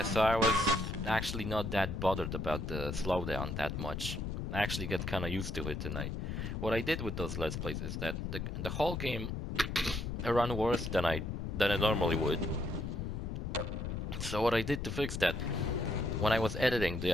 so I was actually not that bothered about the slowdown that much. I actually got kinda used to it, and what I did with those Let's Plays is that the whole game run worse than I normally would. So what I did to fix that, when I was editing the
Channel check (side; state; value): left; noise; rumble, 4 dB below the sound